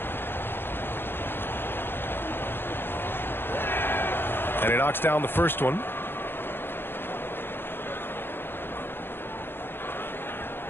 And he knocks down the first one.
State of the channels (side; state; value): right; late; 0.10 ms